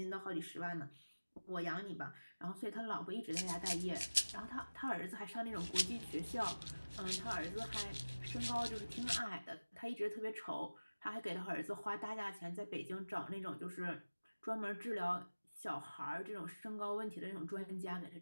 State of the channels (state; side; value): inverted; both; correlation -1.00